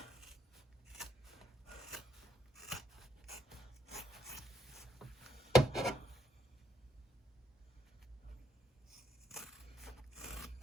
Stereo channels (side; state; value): both; normal; correlation 0.76